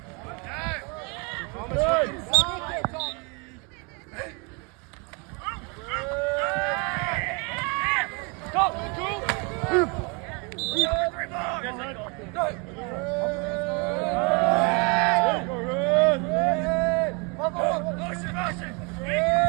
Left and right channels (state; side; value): quieter; left; 32.0 dB